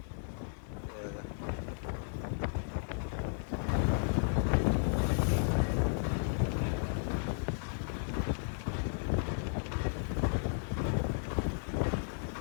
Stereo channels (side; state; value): right; silent; 55 dB below the other